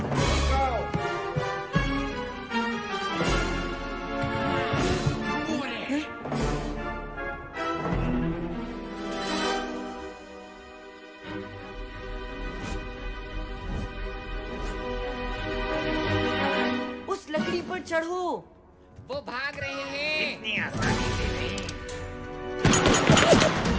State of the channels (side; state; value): both; identical; correlation 1.00